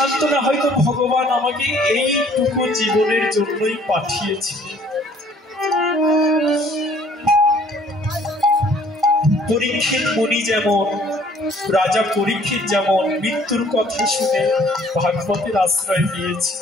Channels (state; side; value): normal; both; correlation 0.58